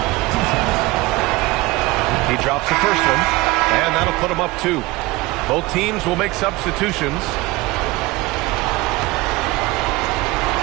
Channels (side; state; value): left; quieter; 20.8 dB